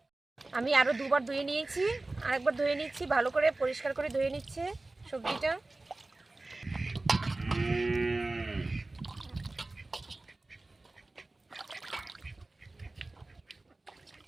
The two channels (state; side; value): quieter; left; 3.0 dB